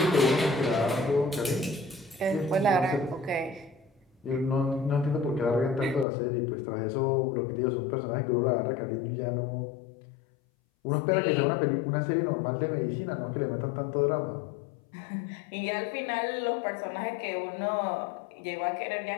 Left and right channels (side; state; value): right; drops out; at 6.1 s